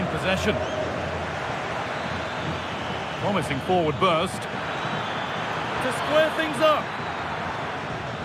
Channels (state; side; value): identical; both; correlation 1.00